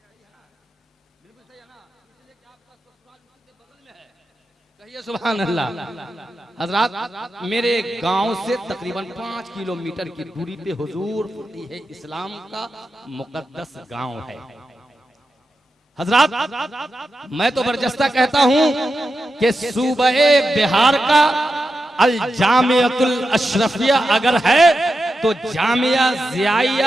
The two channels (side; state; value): both; normal; correlation 0.89